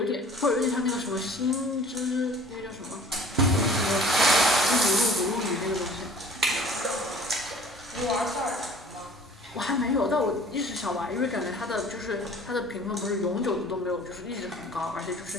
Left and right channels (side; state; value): both; normal; correlation 0.49